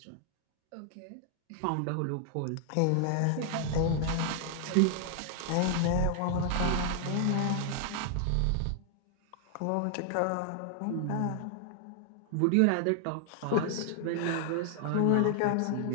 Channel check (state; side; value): different; both; correlation 0.00